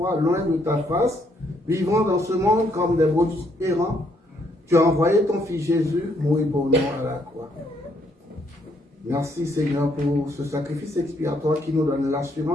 loin de ta face, vivant dans ce monde comme des brebis errants, tu as envoyé ton Fils Jésus mourir pour nous à la croix. Merci Seigneur pour ce sacrifice expiatoire qui nous donne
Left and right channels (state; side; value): normal; both; correlation 0.71